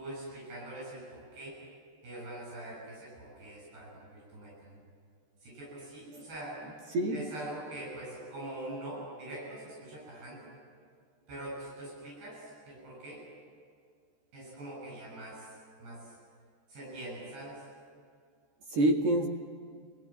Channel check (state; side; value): late; left; 13 ms